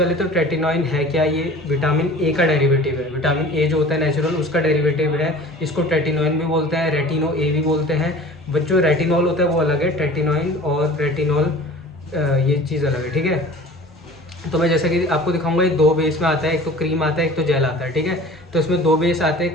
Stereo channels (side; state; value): both; normal; correlation 0.43